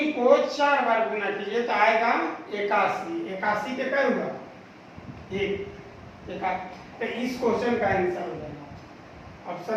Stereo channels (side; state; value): both; identical; correlation 1.00